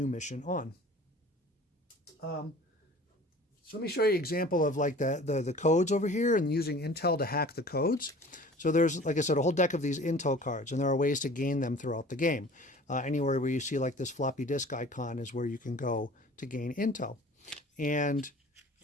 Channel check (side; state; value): both; normal; correlation 0.45